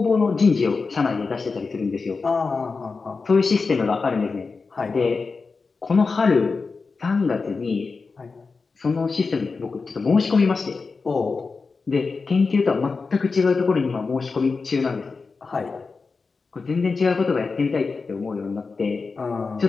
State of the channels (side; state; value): right; quieter; 4.4 dB